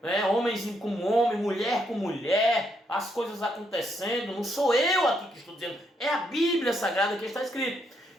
né? Homens com homem, mulher com mulher, as coisas acontecendo. Não sou eu aqui que estou dizendo, é a Bíblia Sagrada que está escrito.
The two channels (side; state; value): both; normal; correlation 0.76